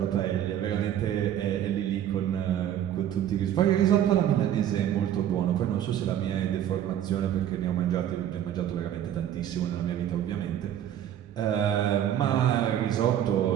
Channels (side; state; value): left; quieter; 10.8 dB